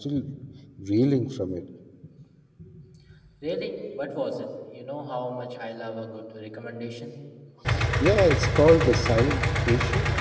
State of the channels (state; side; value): identical; both; correlation 1.00